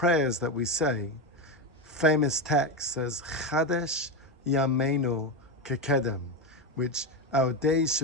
that we say, famous text says, Chadesh Yameinu Kekedem, which our days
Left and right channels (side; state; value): both; normal; correlation 0.14